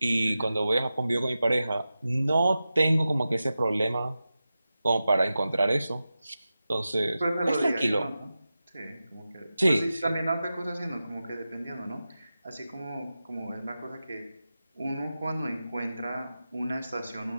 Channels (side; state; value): both; inverted; correlation -0.93